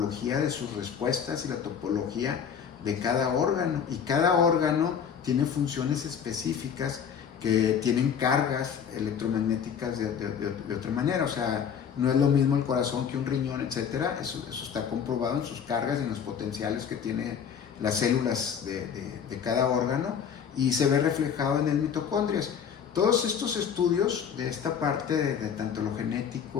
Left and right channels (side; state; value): right; quieter; 7.6 dB